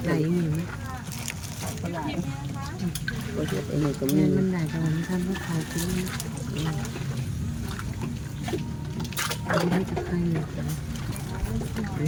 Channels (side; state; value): both; identical; correlation 1.00